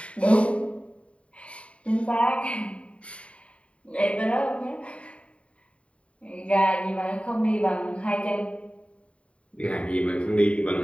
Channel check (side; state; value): right; late; 0.062 ms